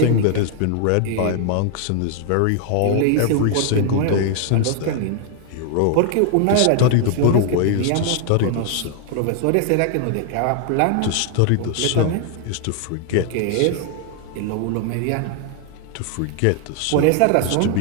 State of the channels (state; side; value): different; both; correlation 0.00